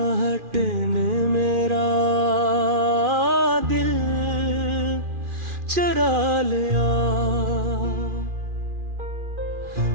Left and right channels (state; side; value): late; left; 2.4 ms